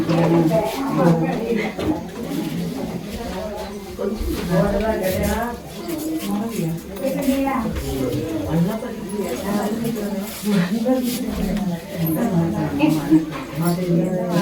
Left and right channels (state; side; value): identical; both; correlation 1.00